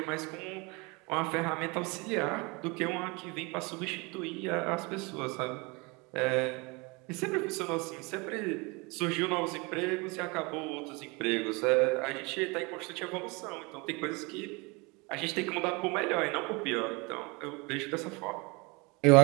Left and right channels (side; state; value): left; quieter; 27.7 dB